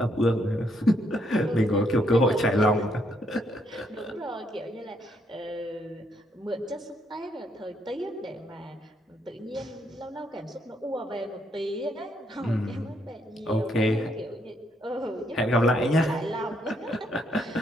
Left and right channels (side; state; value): both; normal; correlation 0.73